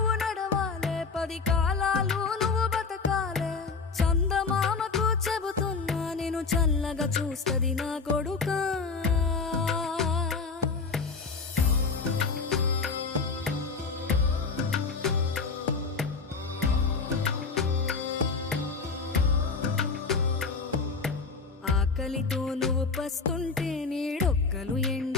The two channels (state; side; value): quieter; right; 4.6 dB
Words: నడవాలే, 10 కాలాలు నువ్వు బతకాలే. చందమామకు చెబుతున్నా నేను చల్లగా చూస్తది నా కొడుకా. ఆకలితో నువ్వు పస్తుంటే నీడొక్కలు